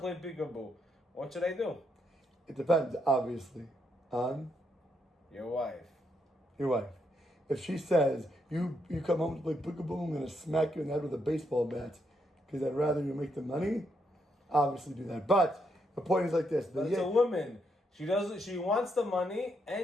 peekaboo. What should I do? It depends, obviously, on your wife. Your wife. If she says, you come home to play peekaboo, I'm going to smack you in the head with a baseball bat because I'd rather you make the money, obviously do that. But the point is like this. But it's a woman. She wants the money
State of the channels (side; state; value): both; normal; correlation 0.78